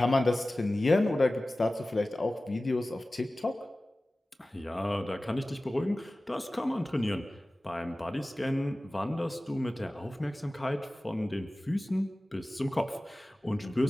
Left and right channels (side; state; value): both; normal; correlation 0.97